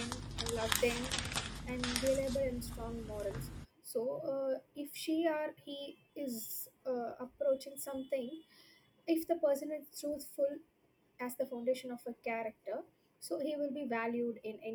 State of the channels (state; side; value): identical; both; correlation 1.00